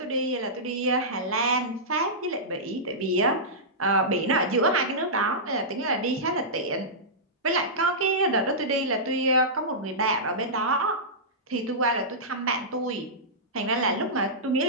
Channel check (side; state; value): both; normal; correlation -0.15